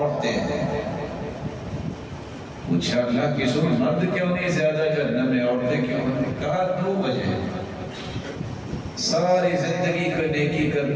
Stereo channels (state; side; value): identical; both; correlation 1.00